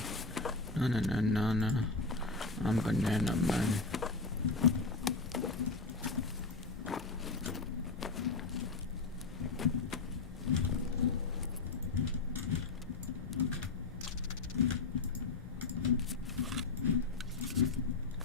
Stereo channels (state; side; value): quieter; right; 3.9 dB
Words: Na. I'm banana man.